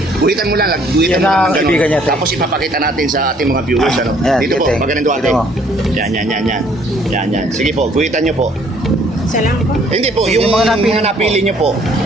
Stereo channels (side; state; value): both; normal; correlation 0.61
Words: Guhitan mo lang, guhitan Yan mo lang ang kaibigan niya, ate. Tapos ipapakita natin sa ating mga viewers, Yan, Dito po, ate. magaling ate. Dito mo. Yan. Sige po, guhitan niyo po. Salam po. Hindi po, Yung yung mga mga napili napili niyo po.